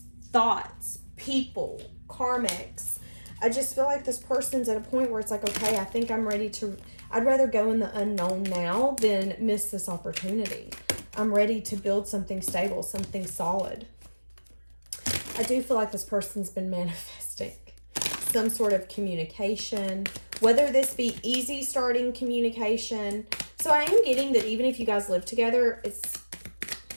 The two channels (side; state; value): both; inverted; correlation -1.00